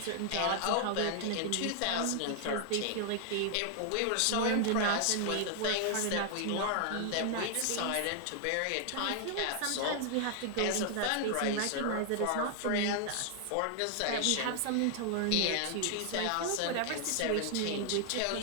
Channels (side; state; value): both; different; correlation 0.00